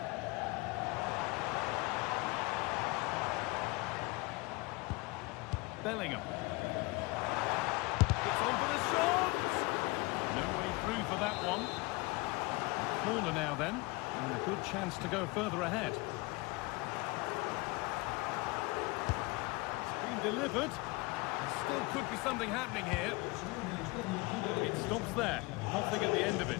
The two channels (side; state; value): right; quieter; 24.4 dB